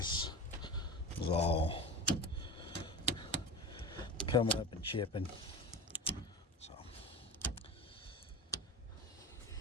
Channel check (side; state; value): both; normal; correlation 0.29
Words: is all coming up and chipping. So